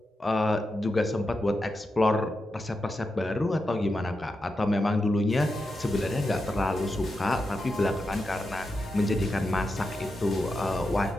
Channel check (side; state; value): both; normal; correlation 0.88